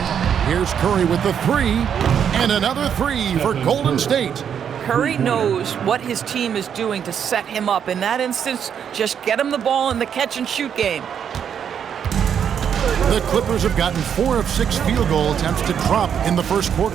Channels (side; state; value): left; quieter; 8.2 dB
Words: Here's Curry with the three, and another three for Golden State. Curry knows what his team is doing to set him up. In that instance, just get him the ball in the catch-and-shoot game. The Clippers have gotten 4 of 6 field goal attempts to drop in the first quarter.